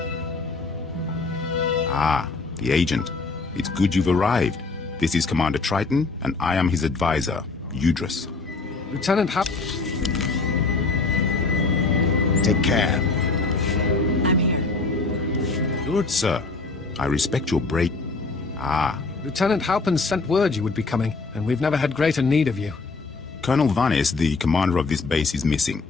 Ah, the agent. It's good you've arrived. This is Commander Triton, and I am his advisor, Udris. Lieutenant Take care. I'm here. Good, sir. I respect your break. Ah. Lieutenant Halpin sent word you would be coming, and we've never had greater need of you. Colonel Vanis, the commander of this base, is missing.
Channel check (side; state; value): right; quieter; 3.9 dB